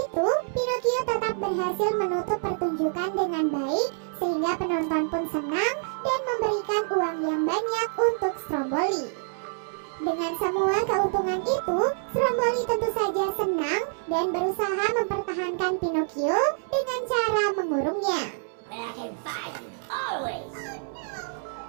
Pinocchio tetap berhasil menutup pertunjukan dengan baik, sehingga penonton pun senang dan memberikan uang yang banyak untuk Stromboli. Dengan semua keuntungan itu, Stromboli tentu saja senang dan berusaha mempertahankan Pinocchio dengan cara mengurungnya.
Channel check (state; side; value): silent; left; 60 dB below the other